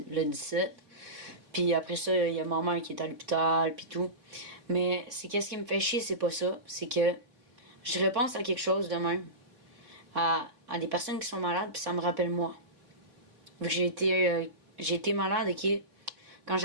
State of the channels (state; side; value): late; left; 3.9 ms